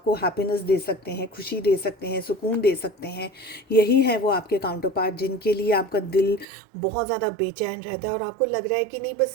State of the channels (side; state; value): left; drops out; at 6.5 s